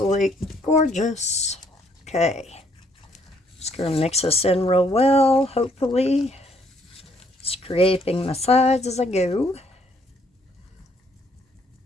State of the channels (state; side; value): normal; both; correlation 0.67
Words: gorgeous. Okay. Just going to mix this in real well, hopefully. Scraping my sides as I go.